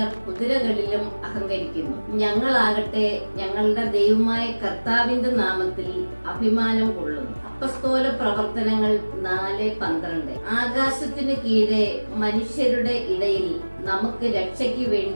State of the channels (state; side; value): inverted; both; correlation -1.00